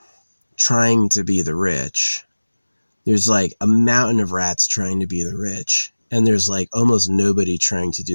trying to be the rich? There's like a mountain of rats trying to be the rich, and there's like almost nobody trying to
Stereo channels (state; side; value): inverted; both; correlation -1.00